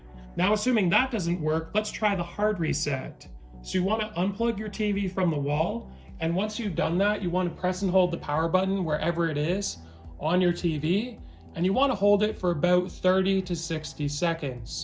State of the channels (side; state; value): both; identical; correlation 1.00